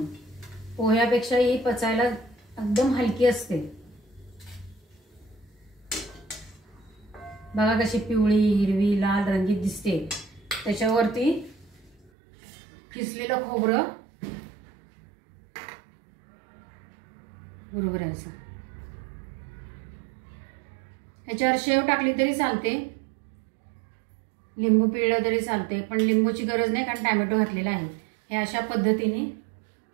पोह्यापेक्षा ही पचायला एकदम हलकी असते। बघा कशी पिवळी, हिरवी, लाल रंगीत दिसते। त्याच्यावरती किसलेलं खोबरं बरोबर आहे असं। ह्याच्यावर शेव टाकली तरी चालते, लिंबू पिळलं तरी चालते, पण लिंबूची गरज नाही कारण टॅमॅटो घातलेला आहे. हे अशा पद्धतीने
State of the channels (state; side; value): drops out; left; at 12.1 s